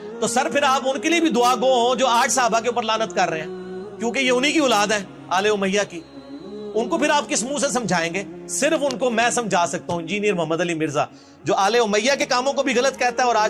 تو سر پھر آپ ان کے لیے بھی دعا گو ہوں جو آج صحابہ کے اوپر لعنت کر رہے ہیں، کیونکہ یہ انہی کی اولاد ہے آل امیہ کی. ان کو پھر آپ کس منہ سے سمجھائیں گے؟ صرف ان کو میں سمجھا سکتا ہوں، انجینئر محمد علی مرزا، جو آل امیہ کے کاموں کو بھی غلط کہتا ہے اور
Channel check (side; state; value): both; identical; correlation 1.00